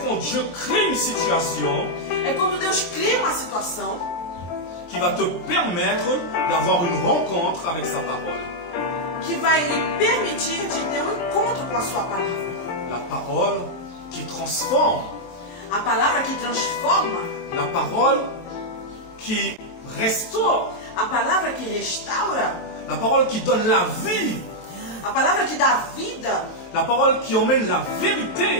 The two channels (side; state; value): right; late; 22 ms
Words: quand Dieu crée une situation É quando Deus cria uma situação qui va te permettre d'avoir une rencontre avec sa parole. que vai lhe permitir de ter um encontro com a sua palavra. La parole qui transforme, A palavra que transforma, la parole qui restaure, a palavra que restaura, la parole qui donne la vie, a palavra que dá vida, la parole qui emmène la